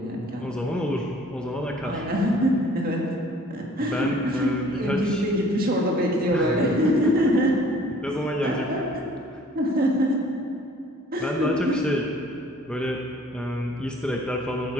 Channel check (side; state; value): both; normal; correlation 0.54